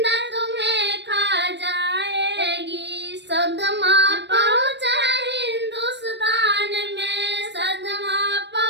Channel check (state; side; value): late; left; 0.51 ms